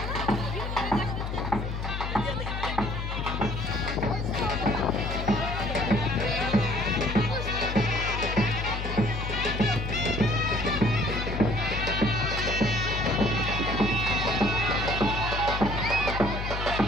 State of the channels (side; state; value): left; noise; hum, 4 dB below the sound